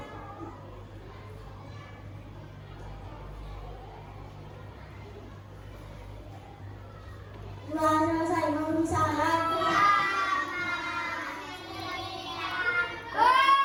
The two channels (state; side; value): identical; both; correlation 1.00